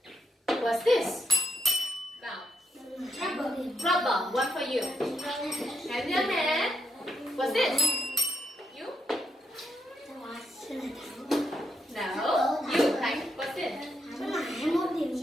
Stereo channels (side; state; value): both; normal; correlation 0.79